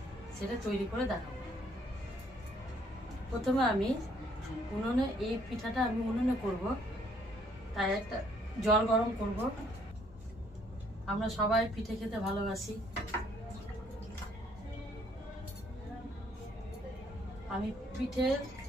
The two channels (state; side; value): normal; both; correlation 0.65